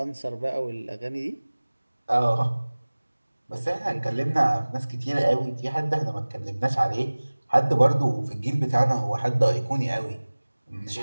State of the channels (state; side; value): inverted; both; correlation -1.00